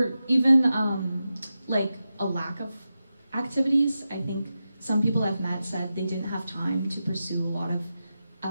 even like a lack of activities. I think some people I've met said they didn't have time to pursue a lot of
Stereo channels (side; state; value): both; inverted; correlation -0.91